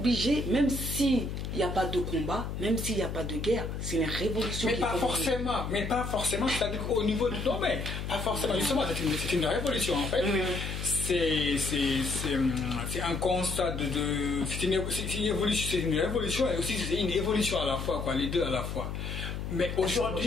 même s'il n'y a pas de combat, même s'il n'y a pas de guerre, c'est une révolution. Mais pas forcément, c'est-à-dire qu'au niveau du domaine, pas forcément, justement, c'est une révolution en fait. C'est un constat c'est une révolution et aussi c'est une évolution à la fois, quoi, les deux à la fois. Mais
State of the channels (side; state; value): left; noise; hum, 5 dB below the sound